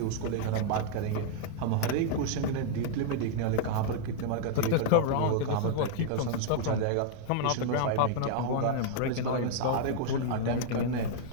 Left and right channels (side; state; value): both; different; correlation -0.01